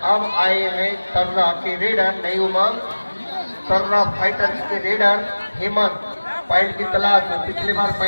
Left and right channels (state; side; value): inverted; both; correlation -1.00